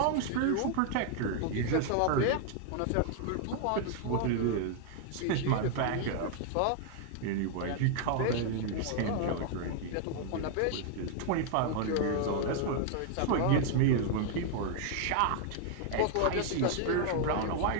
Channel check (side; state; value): both; different; correlation 0.00